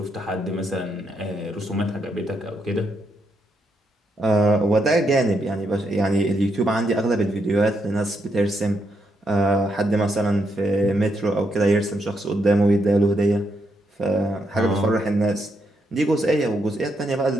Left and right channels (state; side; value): normal; both; correlation 0.79